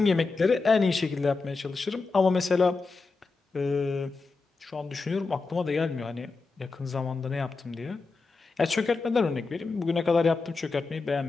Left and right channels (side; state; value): right; quieter; 4.1 dB